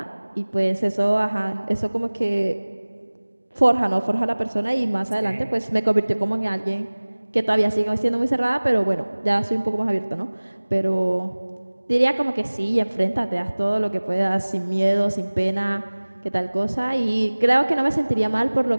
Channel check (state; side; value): inverted; both; correlation -1.00